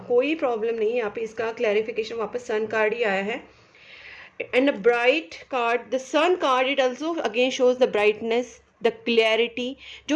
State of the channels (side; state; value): both; identical; correlation 1.00